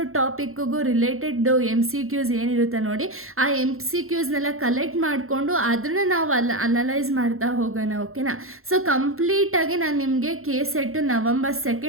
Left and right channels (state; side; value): late; left; 0.62 ms